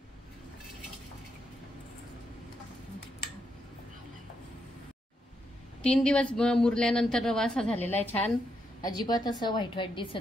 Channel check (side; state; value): both; normal; correlation 0.80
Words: 3 दिवस मुरल्यानंतर रवा असा झालेला आहे छान। अजिबात असं व्हाईट